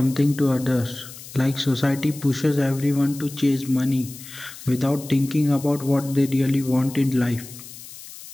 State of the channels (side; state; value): left; noise; hiss, 15 dB below the sound